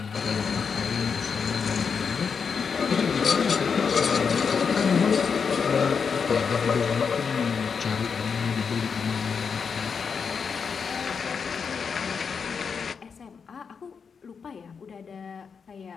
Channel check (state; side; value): quieter; right; 6.0 dB